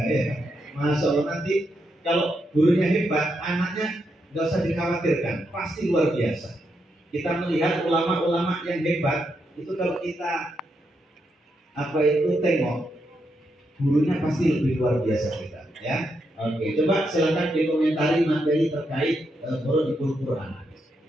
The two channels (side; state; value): both; normal; correlation 0.82